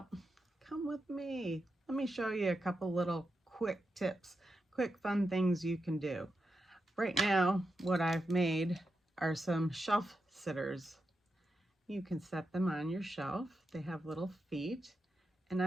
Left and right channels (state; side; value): normal; both; correlation 0.87